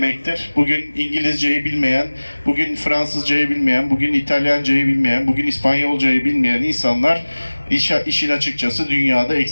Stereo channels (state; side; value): inverted; both; correlation -1.00